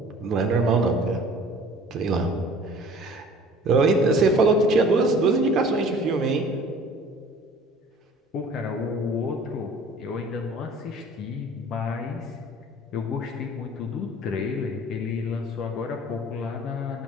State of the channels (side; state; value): both; normal; correlation 0.48